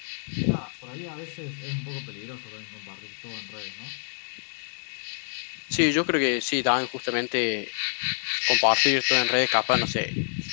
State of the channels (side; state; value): right; silent; digital silence